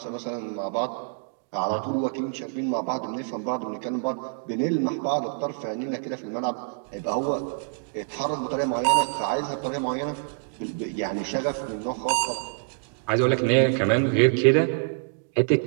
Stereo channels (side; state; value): left; silent; digital silence